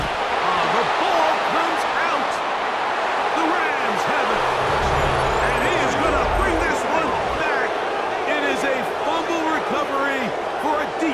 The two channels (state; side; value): identical; both; correlation 1.00